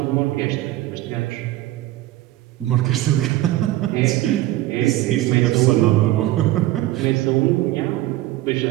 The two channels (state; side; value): quieter; left; 15.9 dB